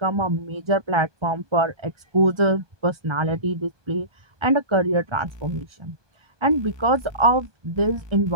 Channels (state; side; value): late; left; 1.2 ms